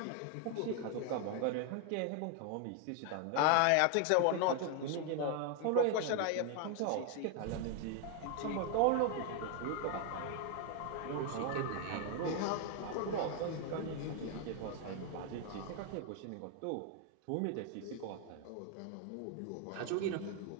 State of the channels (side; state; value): both; different; correlation 0.01